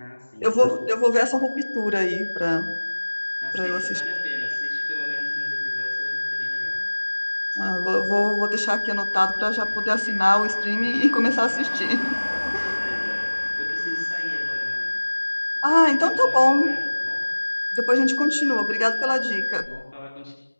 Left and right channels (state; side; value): inverted; both; correlation -1.00